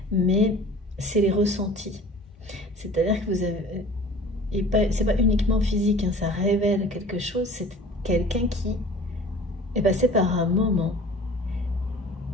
mais c'est les ressentis. C'est-à-dire que vous avez... Et c'est pas uniquement physique, hein, ça révèle quelque chose. C'est quelqu'un qui est passé par un moment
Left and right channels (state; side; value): normal; both; correlation 0.44